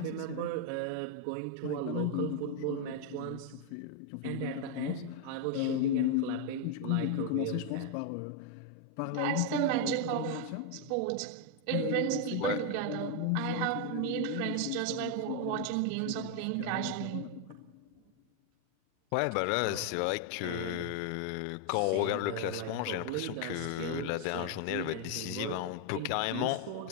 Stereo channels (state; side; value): different; both; correlation 0.01